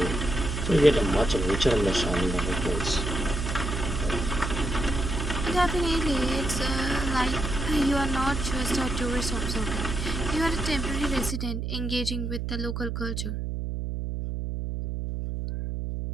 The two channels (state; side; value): noise; right; hum, 3 dB below the sound